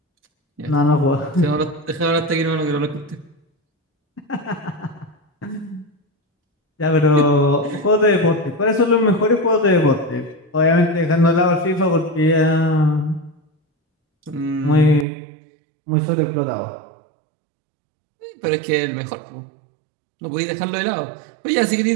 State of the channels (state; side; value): drops out; left; at 15.1 s